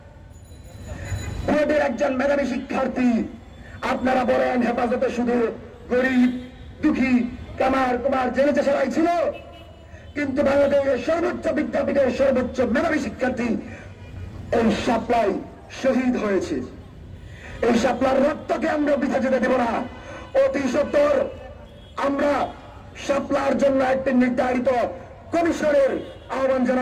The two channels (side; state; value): both; identical; correlation 1.00